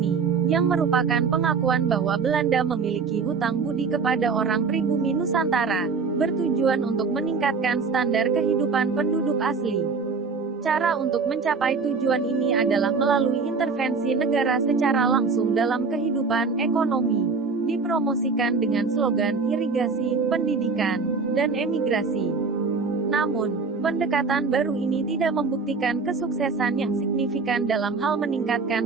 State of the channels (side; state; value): left; quieter; 4.8 dB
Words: yang merupakan pengakuan bahwa Belanda memiliki hutang budi kepada orang pribumi Nusantara, bertujuan untuk meningkatkan standar kehidupan penduduk asli. Cara untuk mencapai tujuan ini adalah melalui intervensi negara secara langsung dalam kehidupan ekonomi. Dipromosikan dengan slogan irigasi, pendidikan, dan emigrasi. Namun, pendekatan baru ini tidak membuktikan kesuksesan yang signifikan dalam hal